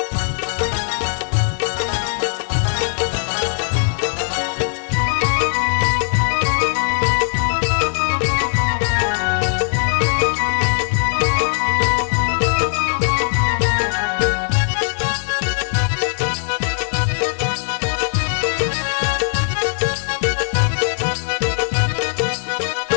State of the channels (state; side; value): silent; right; digital silence